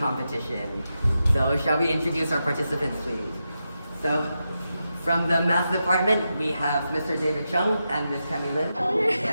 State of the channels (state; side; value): inverted; both; correlation -0.88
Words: So shall we introduce our participants, please? So from the math department, we have Mr. David Chung and Ms. Camille Lin.